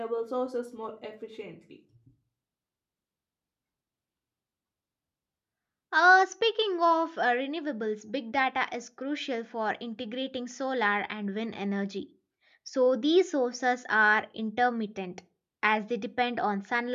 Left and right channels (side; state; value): both; identical; correlation 1.00